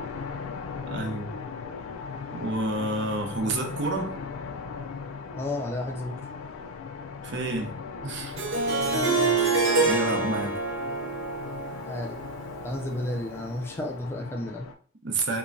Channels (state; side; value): normal; both; correlation 0.11